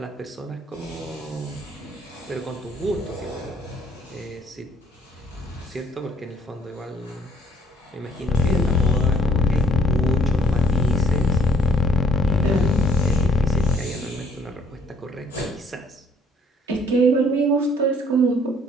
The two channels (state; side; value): normal; both; correlation 0.62